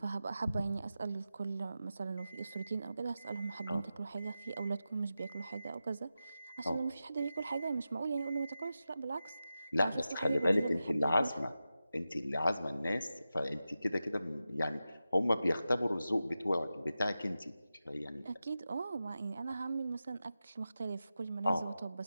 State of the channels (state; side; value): inverted; both; correlation -0.92